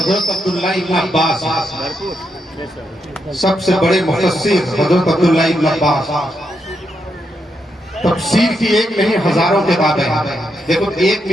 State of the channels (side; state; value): both; normal; correlation 0.82